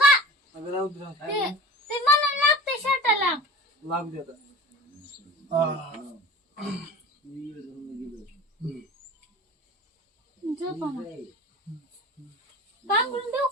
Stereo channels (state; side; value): normal; both; correlation 0.37